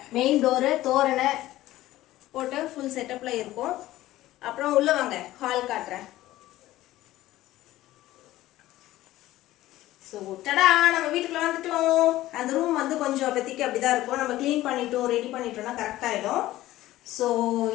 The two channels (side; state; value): right; quieter; 15.7 dB